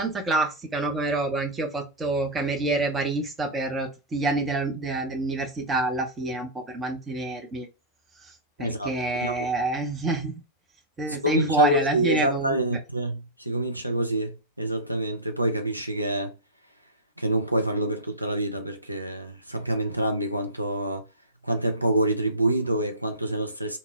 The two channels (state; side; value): normal; both; correlation -0.16